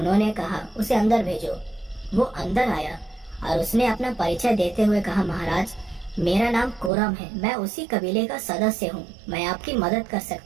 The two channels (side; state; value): left; drops out; at 6.9 s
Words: कहा, उसे अंदर भेजो। वो अंदर आया और उसने अपना परिचय देते हुए कहा, महाराज मेरा नाम कोरम है, मैं उसी कबीले का सदस्य हूँ, मैं आपकी मदद कर